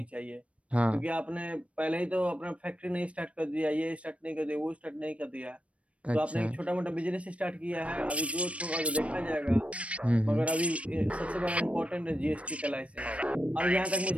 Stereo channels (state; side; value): late; left; 0.063 ms